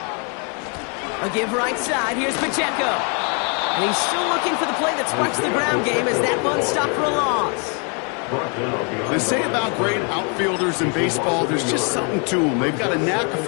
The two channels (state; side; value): quieter; right; 36.7 dB